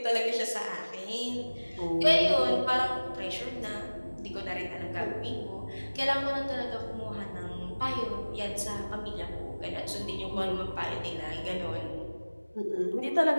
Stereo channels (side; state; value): both; inverted; correlation -1.00